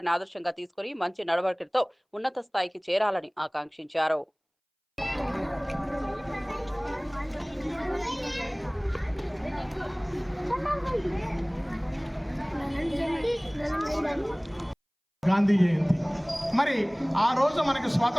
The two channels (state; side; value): identical; both; correlation 1.00